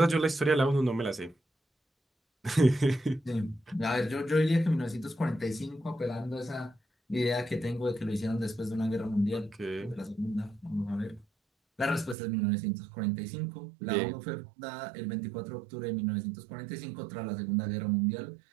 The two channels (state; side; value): drops out; left; at 12.2 s